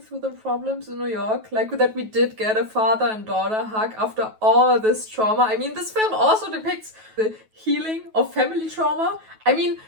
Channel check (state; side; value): late; left; 9.2 ms